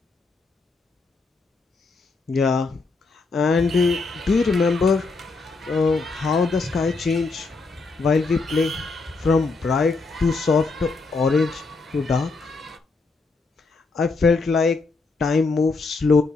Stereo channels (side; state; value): right; quieter; 3.9 dB